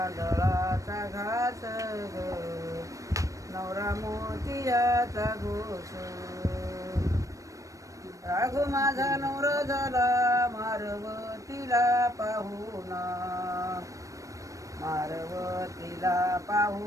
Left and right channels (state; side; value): late; left; 0.16 ms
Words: घास ग, नवरा मोतियाचा घोष. राघू माझा नवरा झाला मारवतीला पाहुणा, मारवतीला